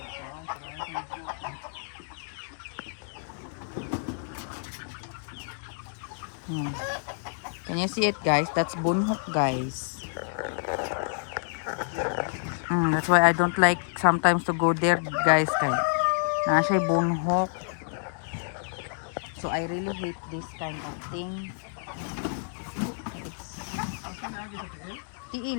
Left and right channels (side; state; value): right; silent; digital silence